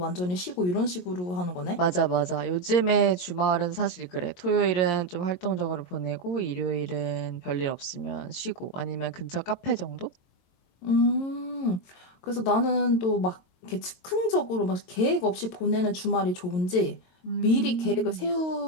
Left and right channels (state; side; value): late; right; 22 ms